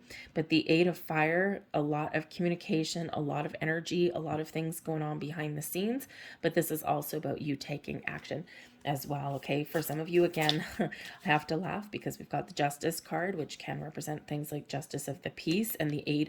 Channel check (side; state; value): both; identical; correlation 1.00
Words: But the 8 of fire, a lot of communication, a lot of energy, a lot of things going on behind the scenes, but this is also about you taking action as well. Okay, for some of you, again, I have to laugh because we've got the Justice card, which can represent things like justice of the peace, and the